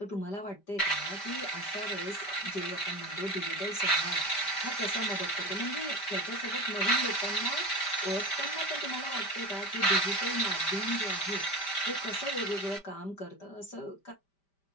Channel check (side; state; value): right; late; 5.1 ms